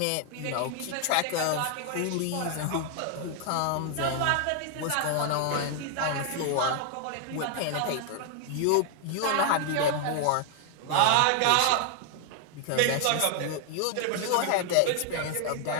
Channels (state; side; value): different; both; correlation 0.00